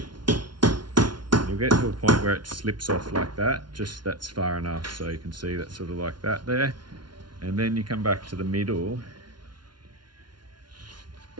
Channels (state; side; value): late; left; 0.71 ms